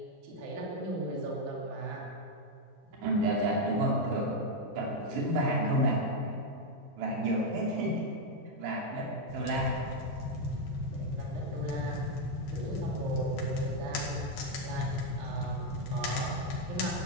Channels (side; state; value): both; normal; correlation 0.02